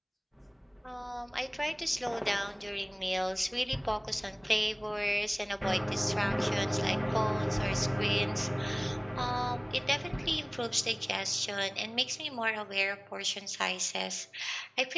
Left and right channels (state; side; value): identical; both; correlation 1.00